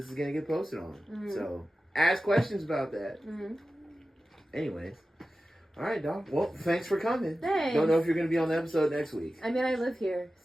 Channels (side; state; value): both; normal; correlation 0.94